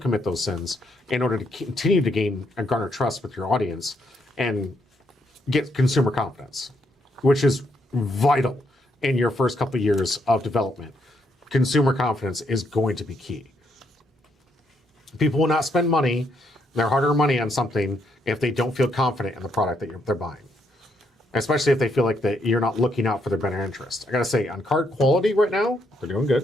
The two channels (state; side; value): normal; both; correlation 0.75